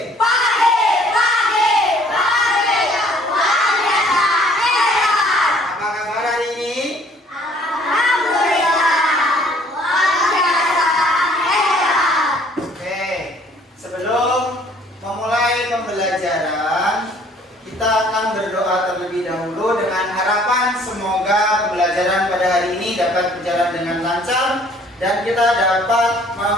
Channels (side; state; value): both; normal; correlation 0.58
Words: Pagi. Apa kabar hari ini? Alhamdulillah. Oke, sebelum memulai pembelajaran, kita akan berdoa terlebih dahulu dengan harapan semoga pembelajaran pada hari ini dapat berjalan dengan lancar dan kita dapat